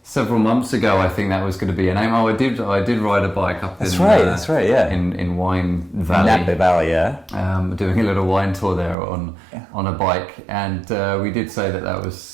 several months ago, I think that was going to be a name. I did ride a bike up that's right, yeah. in Wine Valley. Napa Valley, yeah. Doing a little wine tour there on a bike, and we did say that was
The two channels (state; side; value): drops out; left; at 9.0 s